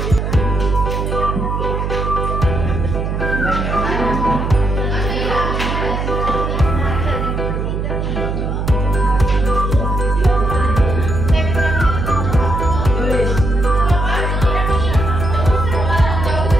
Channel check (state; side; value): noise; right; hum, 2 dB below the sound